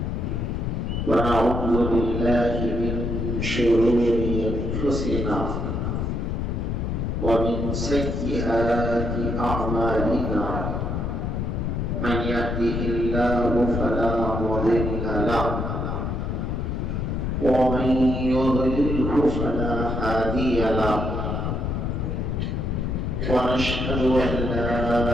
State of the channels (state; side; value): noise; left; rumble, 1 dB below the sound